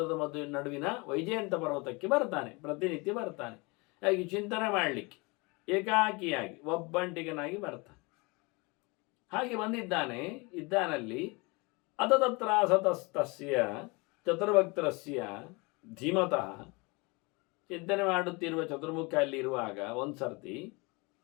ನಡುವಿನ ವೈಜಯಂತ ಪರ್ವತಕ್ಕೆ ಬರ್ತಾನೆ, ಪ್ರತಿನಿತ್ಯ ಬರ್ತಾನೆ. ಹಾಗೆ ಚಿಂತನೆ ಮಾಡಲಿಕ್ಕೆ ಏಕಾಕಿಯಾಗಿ ಒಬ್ಬಂಟಿಗನಾಗಿ ಬರ್ತಾನೆ. ಹಾಗೆ ಇದ್ದಾನಲ್ಲಿ ಅತತತ್ರ ಸತಸ್ತಸ್ಯ ಚತುರ್ಭಕ್ತರಸ್ಯ ಧೀಮತಃ. ಚಿಂತನೆ ಮಾಡುತ್ತಿರುವ ಚತುರ್ಮುಖ ಅಲ್ಲಿ ಇರುವಾಗ ಒಂದು ಸರ್ತಿ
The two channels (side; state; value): right; quieter; 27.2 dB